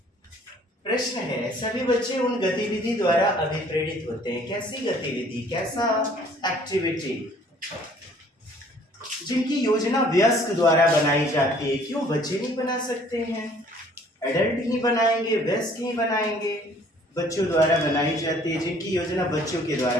प्रश्न है, सभी बच्चे उन गतिविधि द्वारा अभिप्रेरित होते हैं। कैसी गतिविधि, कैसा एक्टिविटी जिनकी योजना वयस्क द्वारा बनाई जाती है। क्यों बच्चे नहीं बना सकते हैं? एडल्ट ही बनाएंगे, वयस्क ही बनाएंगे। बच्चों द्वारा बनाई जाती है, जिनकी योजना बच्चों के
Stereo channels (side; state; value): both; normal; correlation 0.57